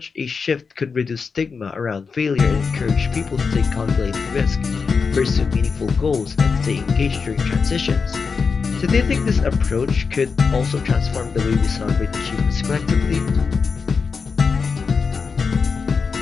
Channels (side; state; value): right; quieter; 5.2 dB